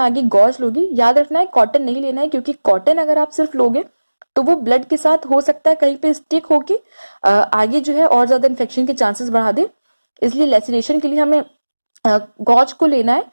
गॉज लोगी। याद रखना है कॉटन नहीं लेना है, क्योंकि कॉटन अगर आप सिर्फ लोगे तो वो ब्लड के साथ हो सकता है कहीं पे स्टिक होके आगे जो है और ज्यादा इन्फेक्शन के चांसेस बढ़ा दे। इसलिए लेसिरेशन के लिए हमें गॉज को लेना है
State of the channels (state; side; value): inverted; both; correlation -1.00